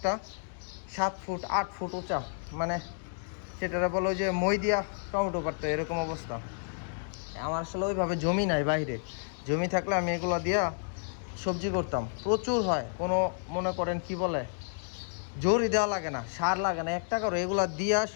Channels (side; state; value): right; silent; digital silence